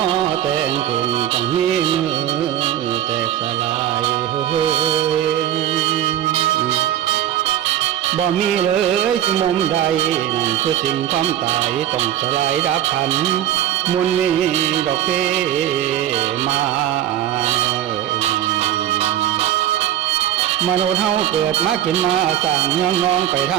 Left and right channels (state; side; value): quieter; left; 11.7 dB